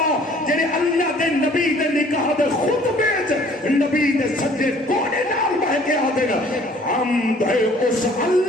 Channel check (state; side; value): normal; both; correlation 0.55